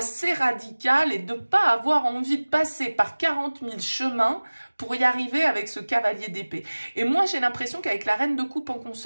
radical et de ne pas avoir envie de passer par 40 000 chemins pour y arriver avec ce cavalier d'épée. Et moi, j'ai l'impression qu'avec la reine de coupe en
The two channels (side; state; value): both; inverted; correlation -1.00